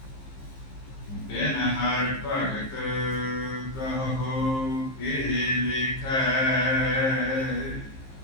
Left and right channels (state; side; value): late; right; 15 ms